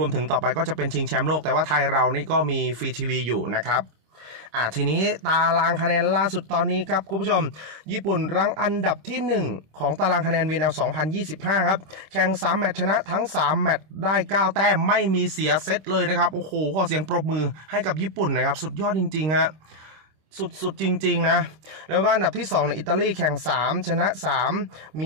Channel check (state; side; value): late; left; 26 ms